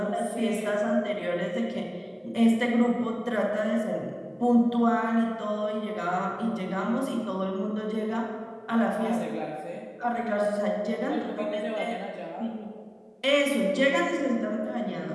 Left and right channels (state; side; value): identical; both; correlation 1.00